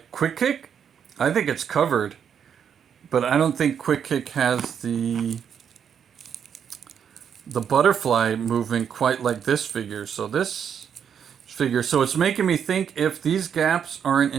Quick Kick, I think it's covered, but I don't think Quick Kick has the butterfly movement quite like this figure. So it's making me think if these gaps aren't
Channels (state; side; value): quieter; left; 7.9 dB